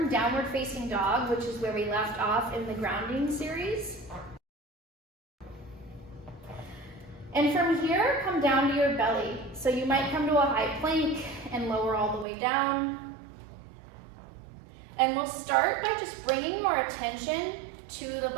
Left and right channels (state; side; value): drops out; left; at 12.2 s